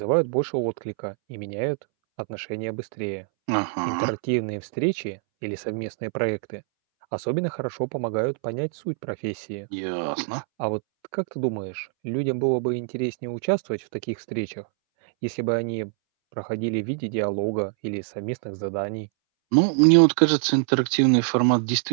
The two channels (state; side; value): silent; left; 62 dB below the other